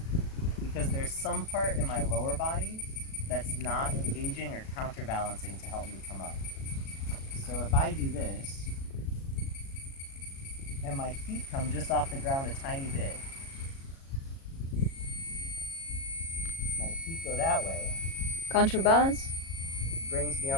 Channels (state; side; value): late; right; 37 ms